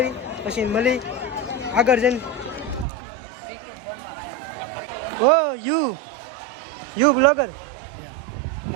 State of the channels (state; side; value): drops out; left; at 2.9 s